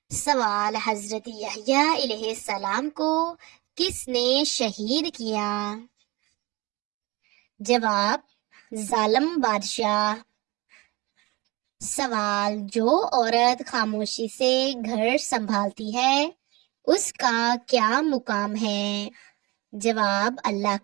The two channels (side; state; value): left; quieter; 23.6 dB